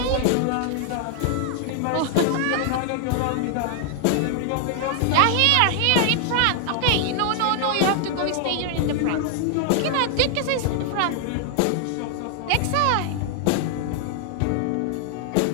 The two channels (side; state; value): both; different; correlation 0.00